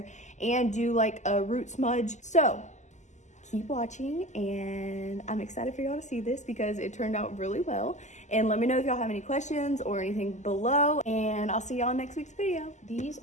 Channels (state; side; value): late; right; 0.34 ms